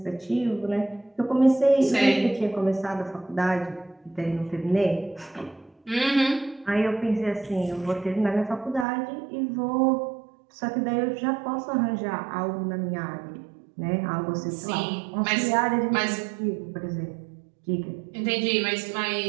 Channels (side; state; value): left; drops out; at 8.8 s